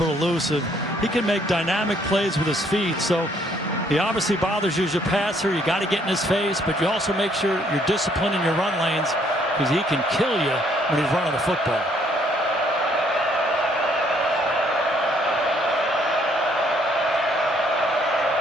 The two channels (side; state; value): both; normal; correlation 0.66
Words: elusive. He can make dynamic plays with his feet. So he obviously bothers you as a passer. You got to get in his face, but you also make sure you're disciplined in your run lanes because he can kill you when he's running the football.